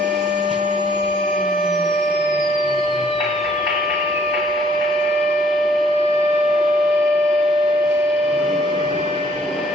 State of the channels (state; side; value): normal; both; correlation 0.63